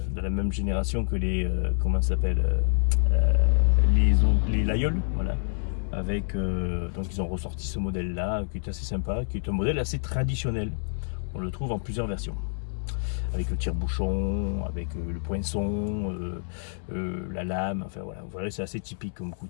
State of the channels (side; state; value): right; silent; 60 dB below the other